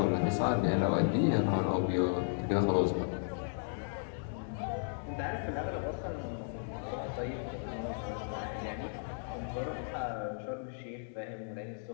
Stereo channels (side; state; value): right; silent; digital silence